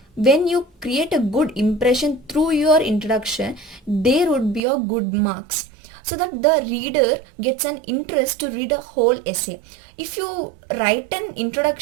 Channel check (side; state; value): left; drops out; at 4.6 s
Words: when you create a good impression through your introduction, there would be a good marks, so that the reader gets an interest to read a whole essay. If you write an